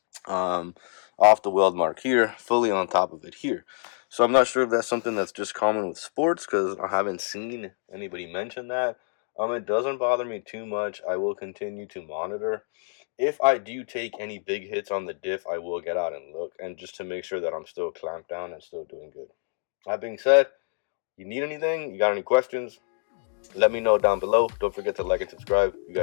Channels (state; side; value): silent; right; 60 dB below the other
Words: off the weld mark here, fully on top of it here. So I'm not sure if that's something that's just common with sports because I haven't seen anybody mention that. It doesn't bother me too much. I will continue to monitor. If I do take any big hits on the diff, I will get out and look, and just to make sure that I'm still clamped down and still doing good. That being said, you need anything, you got any questions, let me know down below. Don't forget to like and subscribe. You